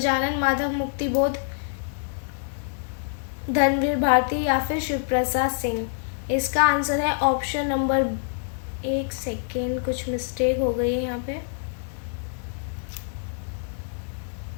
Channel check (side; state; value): right; silent; digital silence